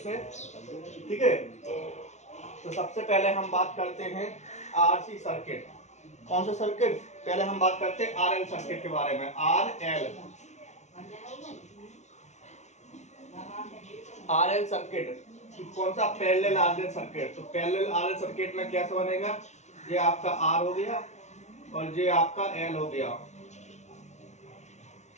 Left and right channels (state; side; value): late; right; 0.33 ms